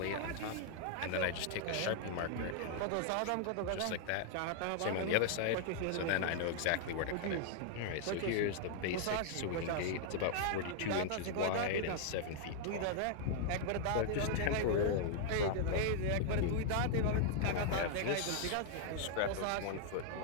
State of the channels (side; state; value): both; different; correlation -0.01